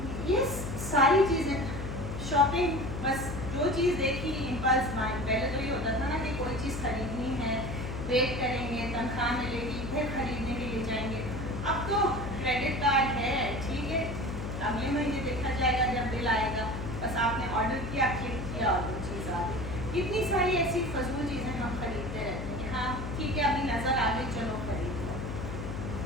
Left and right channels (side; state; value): left; noise; hum, 6 dB below the sound